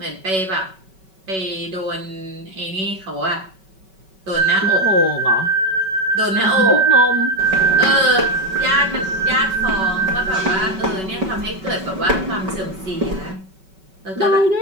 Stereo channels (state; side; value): late; left; 5.3 ms